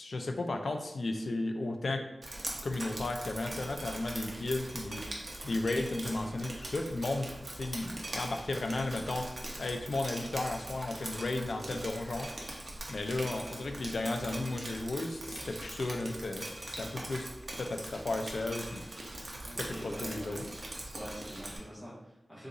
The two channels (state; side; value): normal; both; correlation 0.95